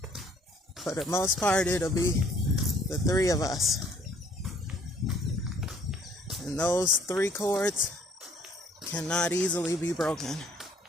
for the most part, it'll be the 3 of us. And those 3 cords cannot easily be broken.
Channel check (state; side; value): normal; both; correlation 0.60